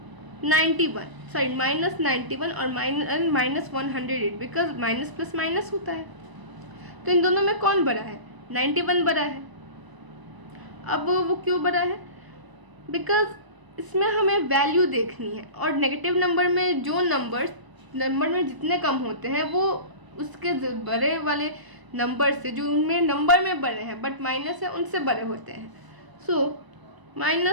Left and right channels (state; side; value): late; left; 1.0 ms